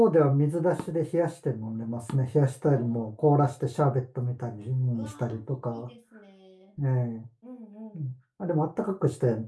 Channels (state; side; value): identical; both; correlation 1.00